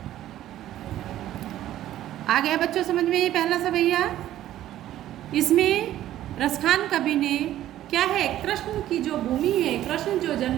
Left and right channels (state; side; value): quieter; left; 13.1 dB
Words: आ गया बच्चों समझ में ये पहला सवैया। इसमें रसखान कवि ने क्या है, कृष्ण की जो भूमि है, कृष्ण जो